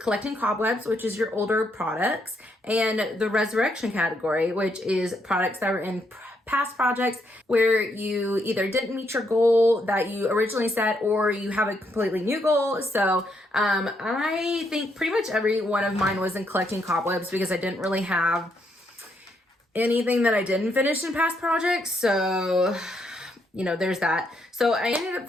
collecting cobwebs, which is your older products, and the resurrection category, which is products that were in past projects where you either didn't meet your goal that you originally set, or you have a completely new goal. So I think pretty much every one of mine was in collecting cobwebs, because I didn't really have anything that I didn't finish in past projects. So you know, there's that. So I ended up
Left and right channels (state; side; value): normal; both; correlation 0.76